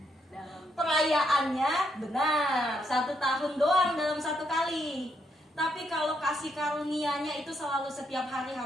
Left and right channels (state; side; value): normal; both; correlation 0.76